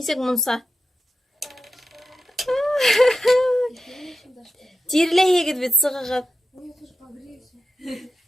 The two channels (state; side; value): normal; both; correlation 0.90